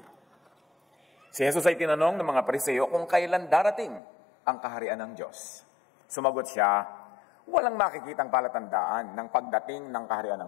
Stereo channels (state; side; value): drops out; right; at 4.0 s